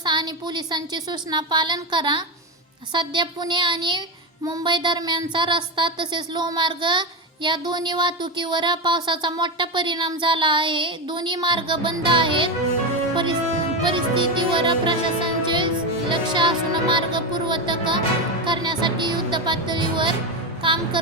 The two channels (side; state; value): both; normal; correlation 0.14